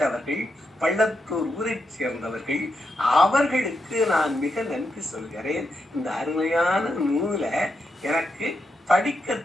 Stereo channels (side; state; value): both; normal; correlation 0.84